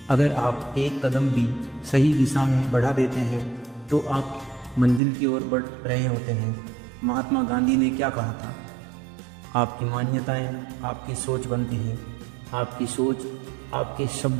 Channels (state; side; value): drops out; left; at 5.0 s